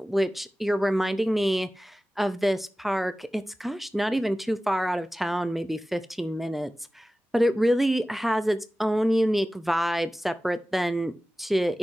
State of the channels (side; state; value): both; normal; correlation 0.96